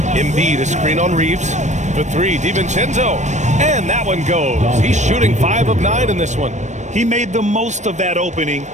Embiid, a screen on Reeves. For 3, DiVincenzo. And that one goes. He's shooting 5 of 9 in this one. He made the most of that opening,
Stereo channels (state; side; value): late; left; 0.34 ms